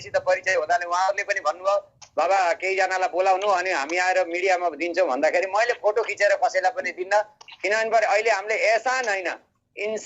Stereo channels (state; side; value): identical; both; correlation 1.00